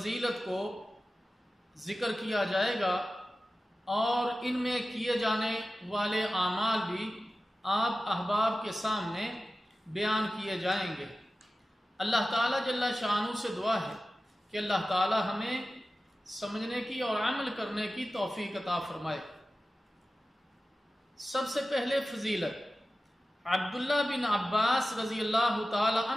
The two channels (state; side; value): normal; both; correlation 0.95